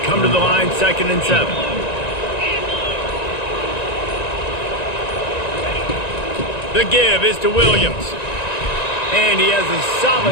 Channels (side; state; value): right; late; 1.9 ms